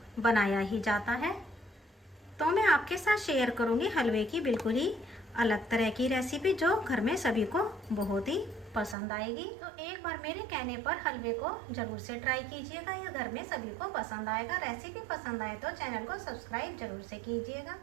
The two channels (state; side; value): drops out; left; at 9.0 s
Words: बनाया ही जाता है। तो मैं आपके साथ शेयर करूंगी हलवे की बिल्कुल ही अलग तरह की रेसिपी जो घर में सभी को बहुत ही पसंद आएगी। तो एक बार मेरे कहने पर हलवे को जरूर से ट्राई कीजिएगा, यह घर में सभी को पसंद आएगा। रेसिपी पसंद आए तो चैनल को सब्सक्राइब जरूर से कीजिएगा।